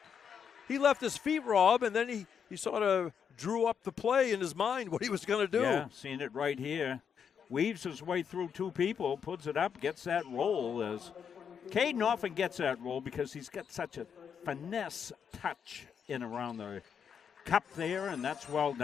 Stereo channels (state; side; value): quieter; right; 7.3 dB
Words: He left his feet, Rob, and then he sort of drew up the play in his mind what he was going to do. Yeah, seeing it right here. Weaves his way through two people, puts it up, gets that roll. As Caden often gets that roll because he's got such a finesse touch in around the cup there, and that's well